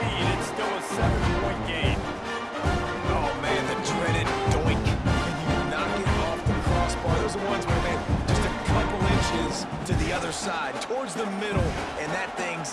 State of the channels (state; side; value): identical; both; correlation 1.00